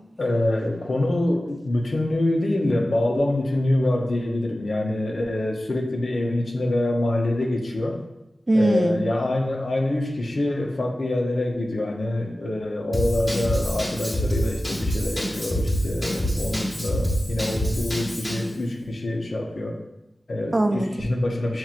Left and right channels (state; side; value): normal; both; correlation 0.95